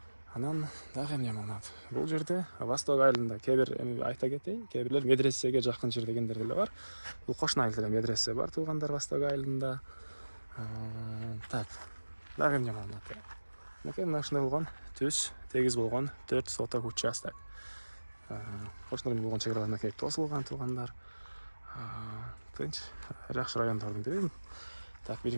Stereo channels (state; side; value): inverted; both; correlation -1.00